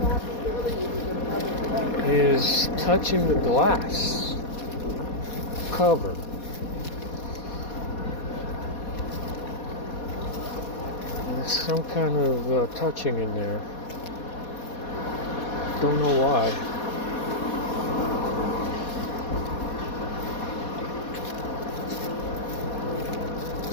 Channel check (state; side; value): late; right; 4.2 ms